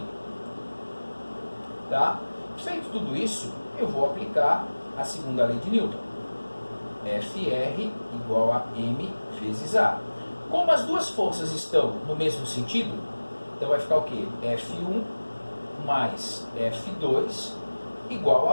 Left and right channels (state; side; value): inverted; both; correlation -1.00